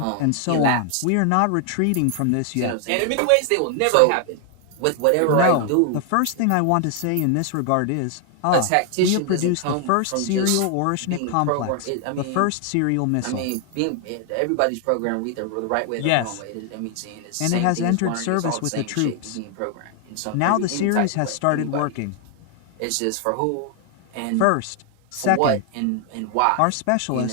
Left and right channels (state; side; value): different; both; correlation 0.00